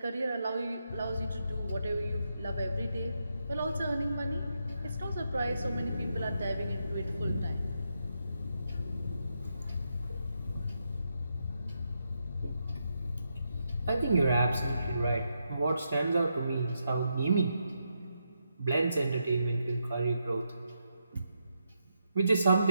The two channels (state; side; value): inverted; both; correlation -0.83